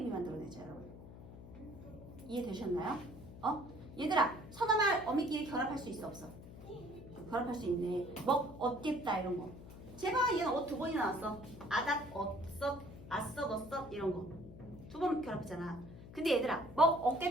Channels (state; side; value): noise; left; hum, 15 dB below the sound